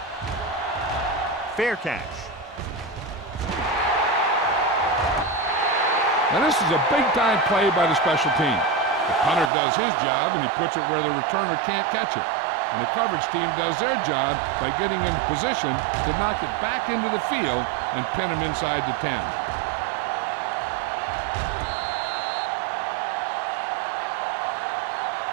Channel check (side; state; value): left; drops out; at 9.5 s